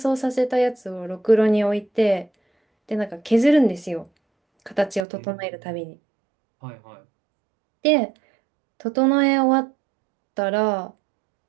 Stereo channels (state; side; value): drops out; left; at 5.1 s